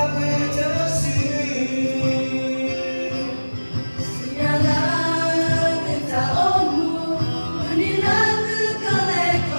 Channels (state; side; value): inverted; both; correlation -1.00